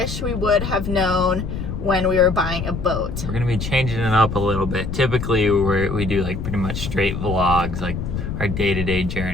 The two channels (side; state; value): left; noise; rumble, 5 dB below the sound